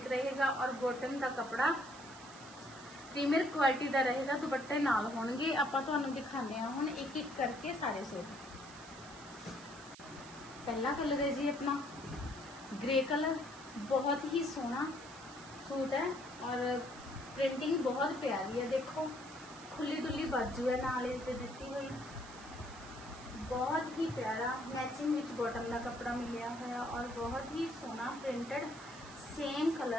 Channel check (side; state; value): right; noise; hiss, 17 dB below the sound